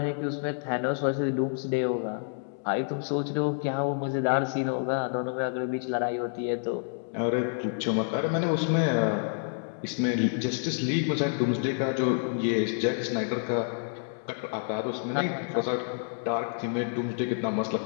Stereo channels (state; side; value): silent; right; digital silence